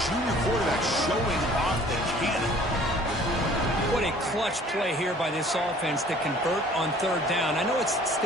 quarterback showing off the cannon. What a clutch play here by this offense to convert on third down. I know it's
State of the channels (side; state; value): both; normal; correlation 0.53